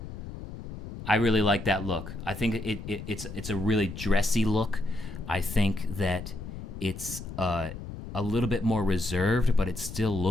I really like that look. I think it's a really dressy look. I think that it's a little bit more reserved, but it still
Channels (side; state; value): left; noise; rumble, 10 dB below the sound